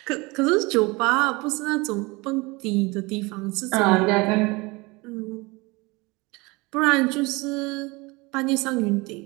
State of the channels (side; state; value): left; quieter; 24.7 dB